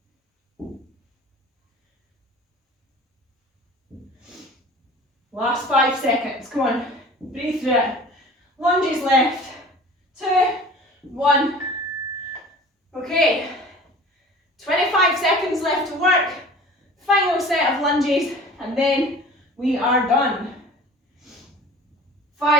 Last 5 seconds. Come on. Breathe through it. Lunges left. 2, 1. Okay. 25 seconds left to work. Final set of lunges, and then we are done.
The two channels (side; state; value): both; normal; correlation 0.43